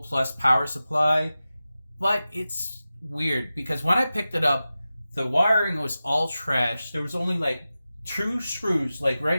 plus power supply, but it's weird because when I picked it up, the wiring was all trash. There was only like 2 screws. Like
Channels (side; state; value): both; inverted; correlation -0.94